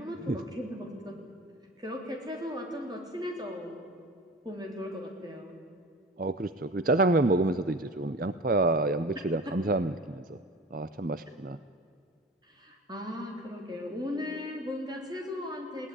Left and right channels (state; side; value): normal; both; correlation 0.38